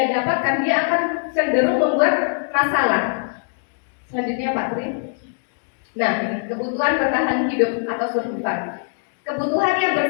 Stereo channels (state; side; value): silent; right; 64 dB below the other